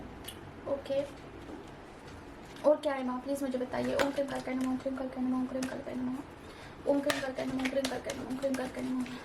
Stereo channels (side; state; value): both; identical; correlation 1.00